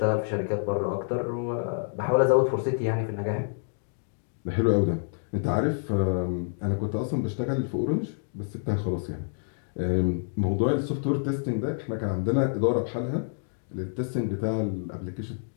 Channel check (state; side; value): silent; right; digital silence